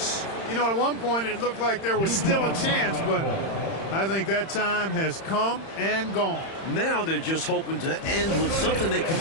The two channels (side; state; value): right; late; 31 ms